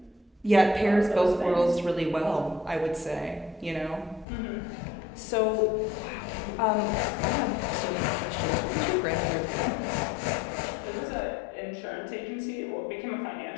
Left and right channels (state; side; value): drops out; right; at 4.2 s